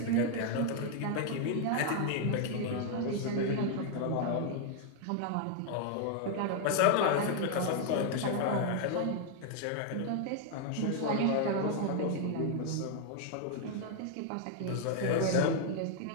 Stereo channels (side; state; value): both; different; correlation 0.00